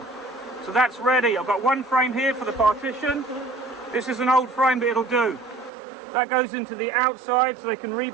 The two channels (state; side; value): drops out; left; at 5.7 s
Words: So that's ready. I've got one frame here for the partition. This is an old frame, but it'll do. That goes into the outside, so they can